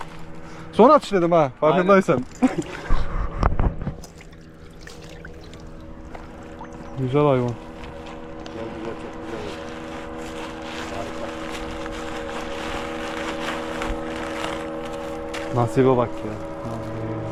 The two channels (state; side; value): identical; both; correlation 1.00